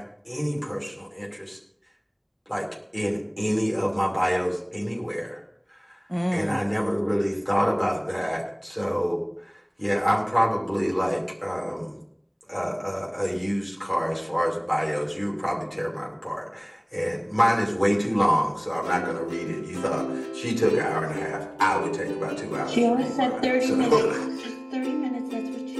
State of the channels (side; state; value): both; identical; correlation 1.00